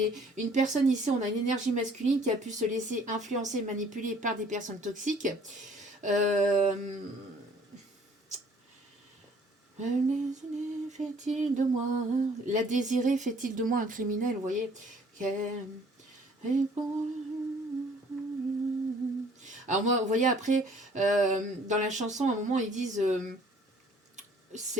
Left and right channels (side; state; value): both; normal; correlation 0.57